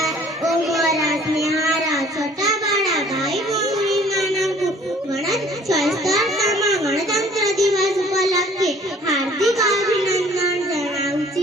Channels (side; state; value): both; normal; correlation 0.54